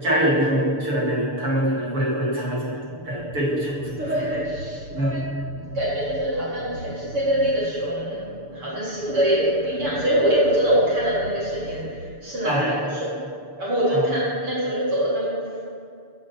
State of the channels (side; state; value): left; late; 6.9 ms